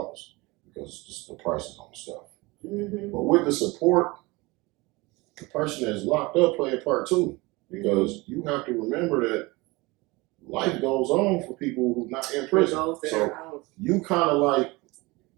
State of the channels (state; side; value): quieter; left; 23.4 dB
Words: because just the prices on the stuff. But with the support, the person that's locked up play a part too, because you have to remember that life goes on for people who's not in prison. So you kind of like